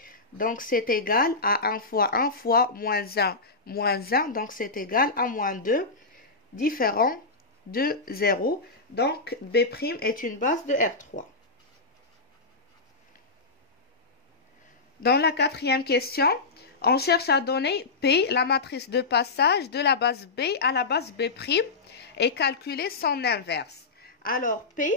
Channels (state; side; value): quieter; right; 3.8 dB